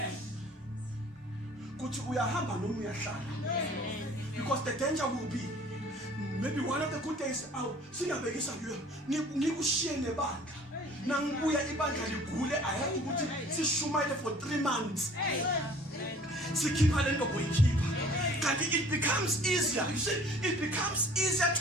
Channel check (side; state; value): both; normal; correlation 0.50